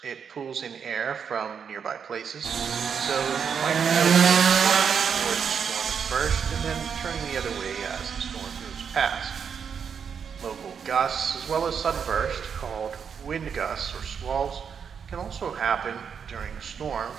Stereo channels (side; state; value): left; quieter; 6.9 dB